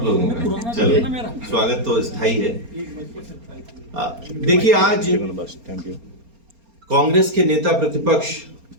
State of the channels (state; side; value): late; left; 4.3 ms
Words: लोगों का चलिए स्वागत तो स्थायी है। देखिए, आज कांग्रेस के नेता प्रतिपक्ष